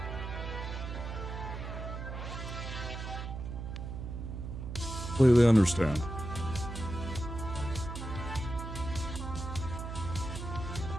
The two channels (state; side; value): noise; right; hum, 7 dB below the sound